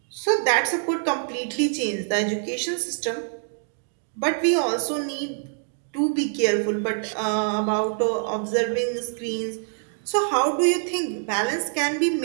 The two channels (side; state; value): left; silent; digital silence